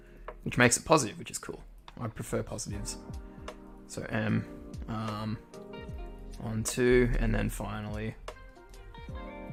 Which makes it positive, which is cool. I prefer positives. So m on 2, and then finally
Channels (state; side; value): identical; both; correlation 1.00